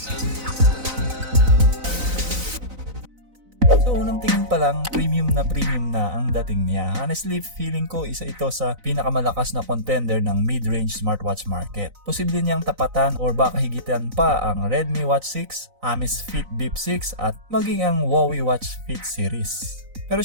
So unang tingin pa lang, premium na ang dating niya. Honestly, feeling ko isa ito sa pinakamalakas na contender ng mid-range smartwatch market. Posible niyang tapatan or baka higitan pa ang Redmi Watch 6, Amazfit Bip 6 at maging ang Huawei Watch Fit series. Pero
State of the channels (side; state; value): left; late; 4.0 ms